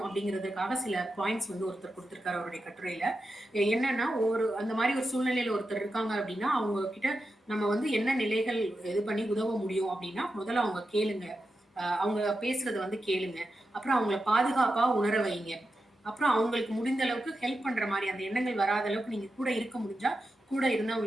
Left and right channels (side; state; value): both; normal; correlation 0.89